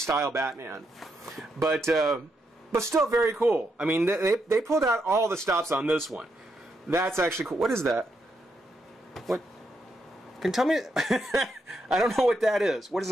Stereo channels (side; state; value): both; normal; correlation 0.80